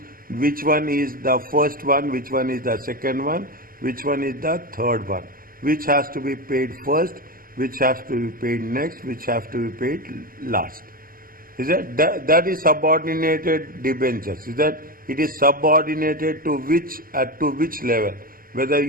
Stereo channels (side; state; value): left; late; 0.42 ms